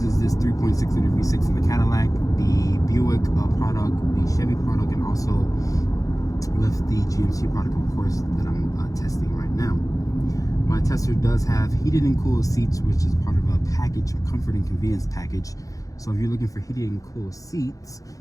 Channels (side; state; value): right; late; 0.17 ms